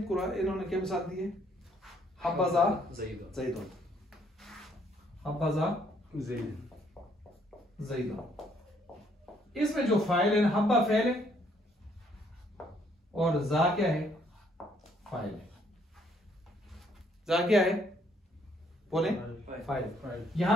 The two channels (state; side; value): normal; both; correlation 0.67